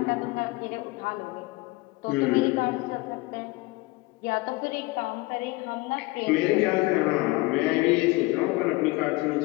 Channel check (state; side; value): quieter; right; 22.3 dB